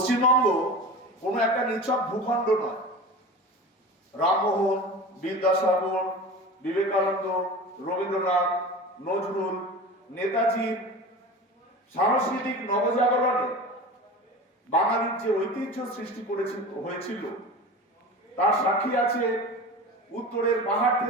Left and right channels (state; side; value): normal; both; correlation 0.33